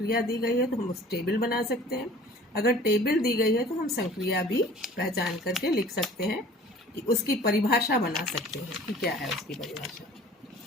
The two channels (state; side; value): normal; both; correlation 0.47